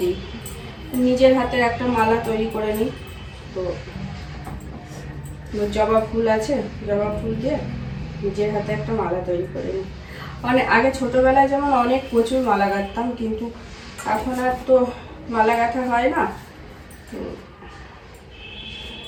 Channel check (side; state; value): both; identical; correlation 1.00